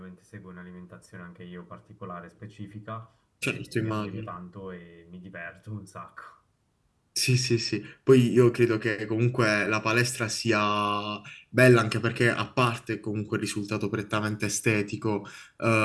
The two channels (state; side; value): identical; both; correlation 1.00